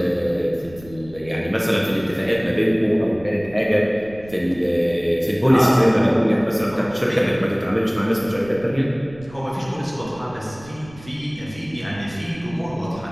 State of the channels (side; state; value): right; noise; rumble, 20 dB below the sound